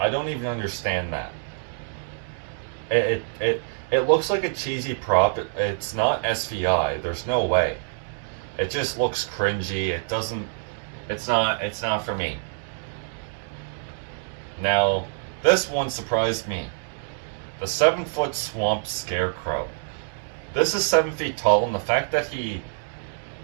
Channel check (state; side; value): silent; left; digital silence